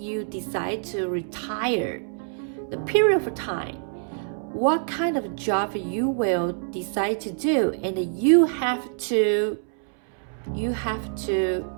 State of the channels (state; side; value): silent; left; 61 dB below the other